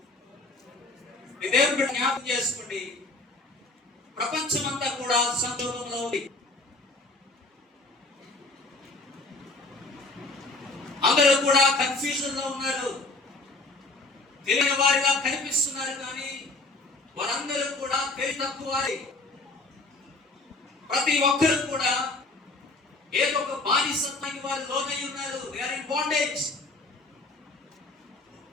దేవుడు జ్ఞాపకం చేసుకోండి, ప్రపంచమంతా కూడా సంక్షోభంలో ఉంది. అందరూ కూడా కన్ఫ్యూజన్ లో ఉన్నారు. తెలియని వారిగా కనిపిస్తున్నారు, కానీ వారందరూ కూడా తెలివి తక్కువ వారి. ప్రతి ఒక్కరు కూడా ఏదో ఒక బానిసత్వానికి వారు లోనై ఉన్నారు. They are in bondage.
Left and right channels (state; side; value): quieter; right; 3.1 dB